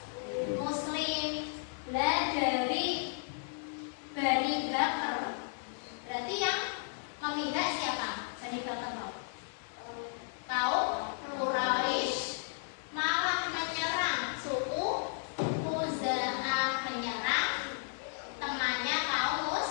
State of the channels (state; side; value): silent; right; 55 dB below the other